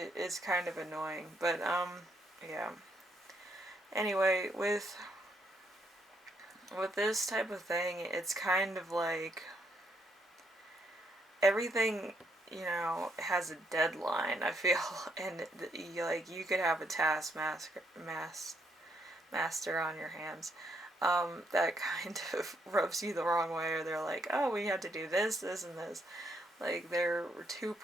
kind of annoying, but yeah. Anyway, with this type of thing, it's kind of like everything has a deadline, I feel, and you could have a taskmaster on your hands that kind of rubs you the wrong way, or they're like, oh, we have to do this, this, and this. Like, they're too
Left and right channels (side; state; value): both; normal; correlation 0.74